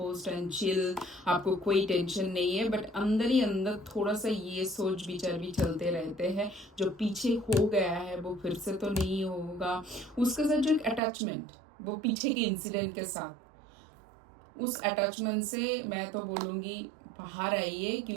एंड चिल, आपको कोई टेंशन नहीं है, बट अंदर ही अंदर थोड़ा सा ये सोच विचार भी चलते रहते हैं, जो पीछे हो गया है वो फिर से तो नहीं होगा। उसके साथ जो एक अटैचमेंट वो पीछे के इंसिडेंट के साथ, उस अटैचमेंट से मैं तो बोलूँगी बाहर आइए,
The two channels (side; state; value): left; drops out; at 11.0 s